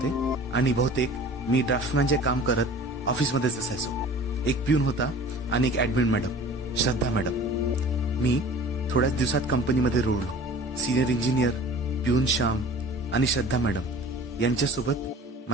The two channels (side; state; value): both; normal; correlation 0.43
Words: आणि बहुतेक मी ड्राफ्टमॅनचे काम करत ऑफिसमध्येच असायचो। एक प्यून होता आणि एक ऍडमिन मॅडम, श्रद्धा मॅडम। मी थोड्याच दिवसात कंपनीमध्ये रुळलो। सिनियर इंजिनियर, प्यून श्याम आणि श्रद्धा मॅडम यांच्यासोबत